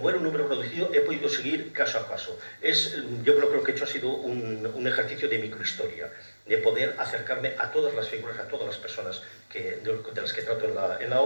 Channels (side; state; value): both; inverted; correlation -1.00